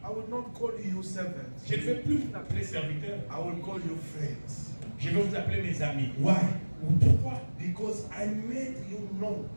I will not call you servants. je ne vais plus vous appeler serviteurs. I will call you friends. Je vais vous appeler mes amis. Why? Pourquoi? Because I made you know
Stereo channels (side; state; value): both; inverted; correlation -1.00